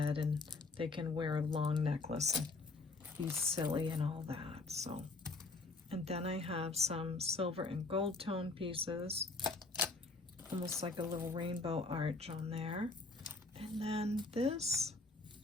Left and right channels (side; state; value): right; quieter; 3.5 dB